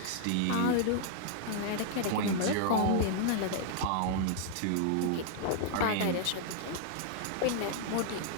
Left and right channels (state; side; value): different; both; correlation -0.01